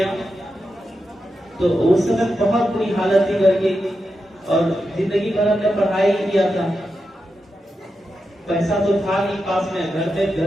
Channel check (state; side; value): normal; both; correlation 0.88